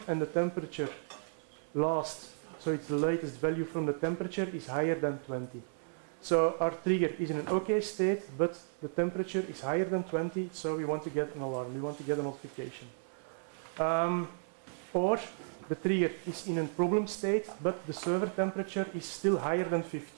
and the temperature last, so it's the latest value from the temperature, is higher than 20. So our trigger is in an OK state, but the temperature is higher than 20, so we want to get an alarm, we want to get a notification. Or the trigger is in a problem state, but the server temperature is still higher than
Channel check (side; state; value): left; silent; 55 dB below the other